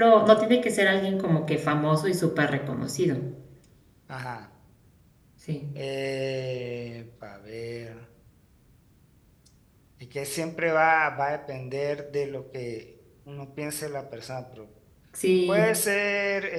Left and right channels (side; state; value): both; identical; correlation 1.00